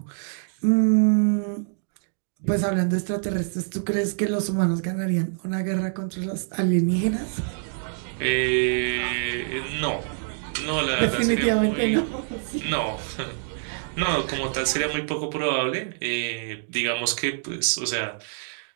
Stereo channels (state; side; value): silent; left; digital silence